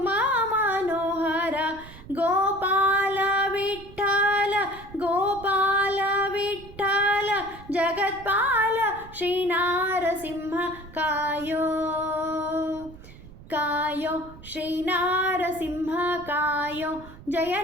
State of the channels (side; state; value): right; noise; rumble, 18 dB below the sound